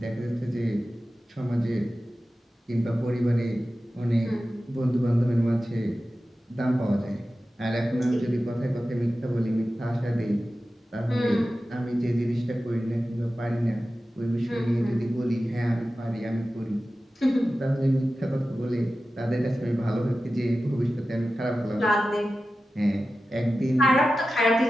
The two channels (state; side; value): normal; both; correlation 0.94